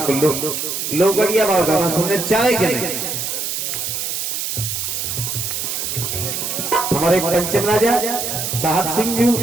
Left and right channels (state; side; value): noise; right; hiss, 3 dB below the sound